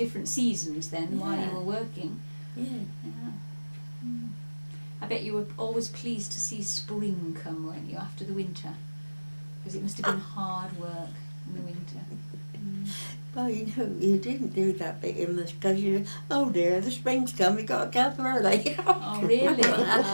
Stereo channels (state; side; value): inverted; both; correlation -1.00